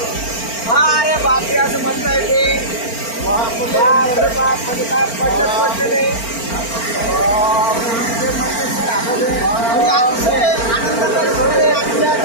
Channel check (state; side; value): late; right; 4.4 ms